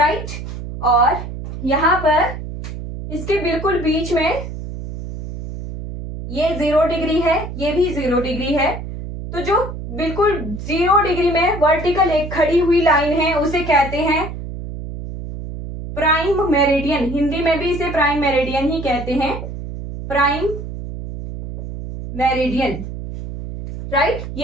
और यहां पर इसके बिल्कुल बीच में ये 0 डिग्री है, ये भी 0 डिग्री है। तो जो बिल्कुल 0 डिग्री में वर्टिकल एक खड़ी हुई लाइन है उसे कहते हैं प्राइम मेरिडियन। हिंदी में भी इसे प्राइम मेरिडियन ही कहते हैं, प्राइम मेरिडियन, राइट।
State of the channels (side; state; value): right; noise; hum, 8 dB below the sound